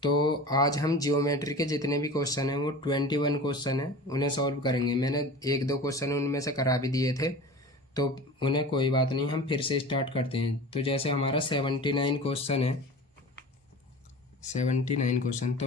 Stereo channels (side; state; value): both; normal; correlation 0.36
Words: तो आज हम जियोमेट्री के जितने भी क्वेश्चन हैं वो 21 क्वेश्चन हैं, उन्हें सॉल्व करेंगे। मैंने एक दो क्वेश्चन उनमें से करा भी दिए थे, तो उन्हें कोई बात नहीं, हम फिर से स्टार्ट करते हैं। तो जैसे हमारा 79 क्वेश्चन है, 79 क्वेश्चन,